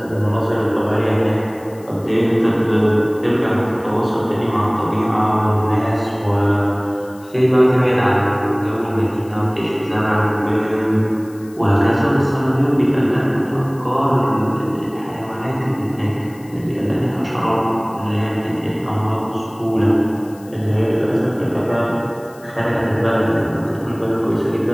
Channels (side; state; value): left; noise; hiss, 26 dB below the sound